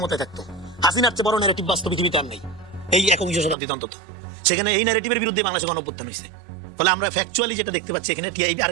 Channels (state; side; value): drops out; left; at 3.6 s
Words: থাকতো। হাসিনার চেয়ে বড় ন্যারেটিভ বাস্তব পৃথিবীতে আর নেই, এই 21 শতাব্দীতে অন্তত। সেখানে এই ন্যারেটিভের বিরুদ্ধে বাংলাদেশে গণঅভ্যুত্থান হয়েছে। তাহলে আমরা ফ্যাকচুয়ালি যেটা দেখতে পাচ্ছি এখানে, টিআইবি